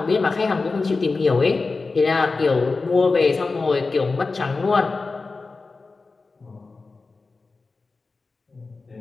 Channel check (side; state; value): right; quieter; 3.9 dB